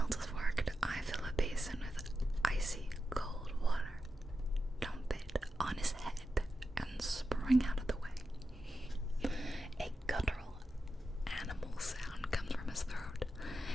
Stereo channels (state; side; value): normal; both; correlation 0.90